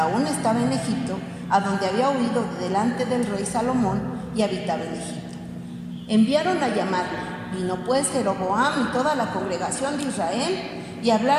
estaba en Egipto, a donde había huido de delante del rey Salomón y habitaba en Egipto, enviaron a llamarle. Vino pues Jeroboam y toda la congregación de Israel y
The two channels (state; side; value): identical; both; correlation 1.00